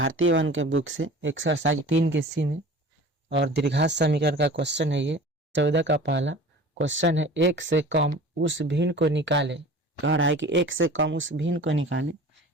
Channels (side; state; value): both; normal; correlation 0.41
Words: वन के बुक से एक्सरसाइज 3 के सी में। और द्विघात समीकरण का क्वेश्चन है ये 14 का पहला क्वेश्चन है। एक से कम उस भिन्न को निकाले। कह रहा है कि एक से कम उस भिन्न को निकाले